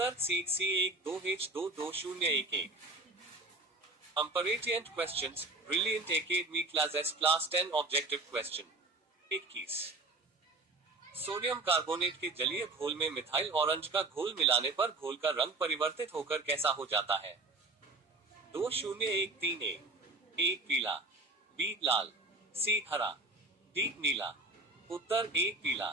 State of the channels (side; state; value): left; quieter; 3.2 dB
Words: C C12H22011। Comparison questions, Brilliant Academy Classes Class 10 Objective Question 21। Sodium carbonate के जलीय घोल में मिथाइल ऑरेंज का घोल मिलाने पर घोल का रंग परिवर्तित होकर कैसा हो जाता है? 2013 ए पीला, बी लाल, सी हरा, डी नीला। उत्तर ए